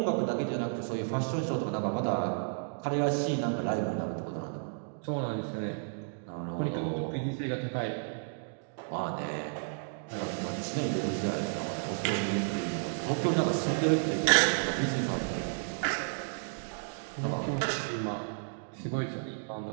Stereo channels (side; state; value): left; silent; digital silence